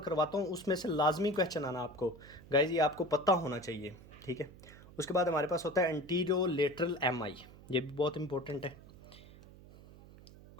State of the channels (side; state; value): right; noise; hum, 20 dB below the sound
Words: करवाता हूँ, उसमें से लाजमी क्वेश्चन आना आपको गाइज, ये आपको पता होना चाहिए, ठीक है। उसके बाद हमारे पास होता है एंटीरियो लेटरल MI, ये भी बहुत इंपॉर्टेंट है।